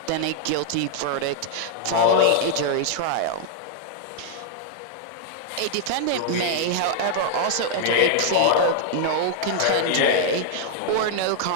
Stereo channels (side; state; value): both; different; correlation -0.01